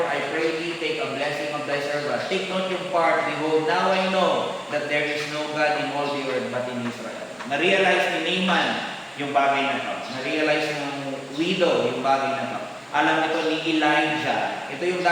I pray thee, take a blessing of thy servant. Take note yung part, behold, now I know that there is no God in all the earth but in Israel. Na-realize ni Naaman yung bagay na to. Na-realize ng widow yung bagay na to. Alam ito ni Elijah. Ito yung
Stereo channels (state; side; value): identical; both; correlation 1.00